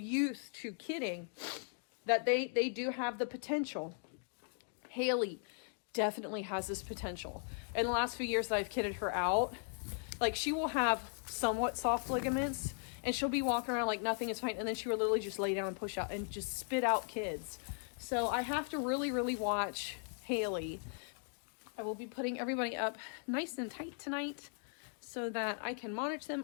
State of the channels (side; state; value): right; silent; 52 dB below the other